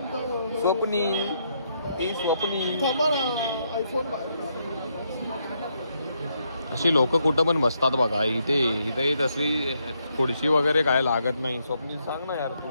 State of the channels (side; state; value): both; inverted; correlation -0.77